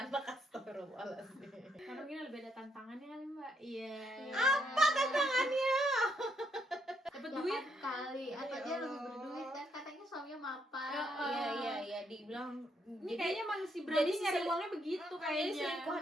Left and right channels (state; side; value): normal; both; correlation 0.75